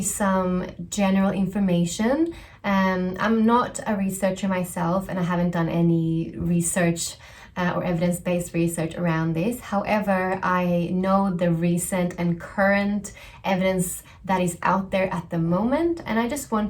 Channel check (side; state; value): both; identical; correlation 1.00